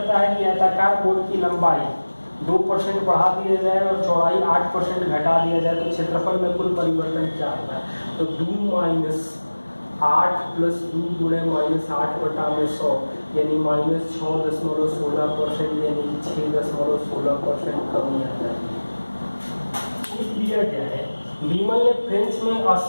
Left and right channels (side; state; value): both; inverted; correlation -1.00